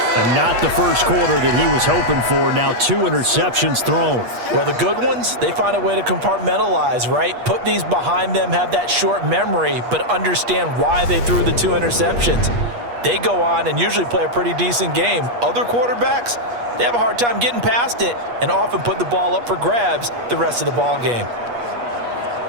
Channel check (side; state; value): left; late; 8.4 ms